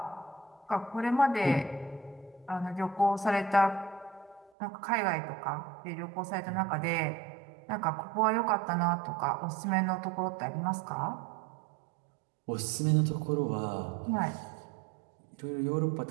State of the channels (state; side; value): drops out; left; at 4.5 s